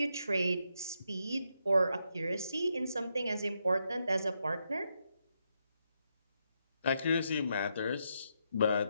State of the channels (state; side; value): inverted; both; correlation -0.81